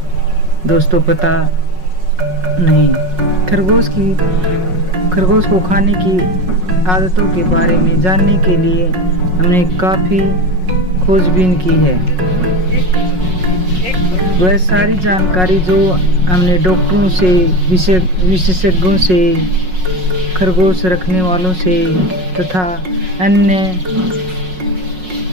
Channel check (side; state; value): left; late; 5.5 ms